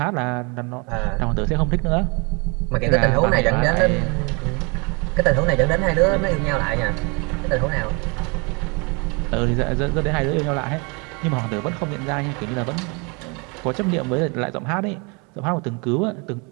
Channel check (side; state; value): left; quieter; 31.2 dB